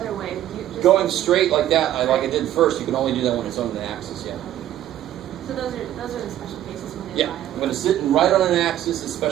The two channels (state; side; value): quieter; left; 12.4 dB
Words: way. Going straight like that, like I did first, you can only do that when it's on the axis, yeah. So those are the special cases when they Yeah, lie. I'm going to sit right on an axis, a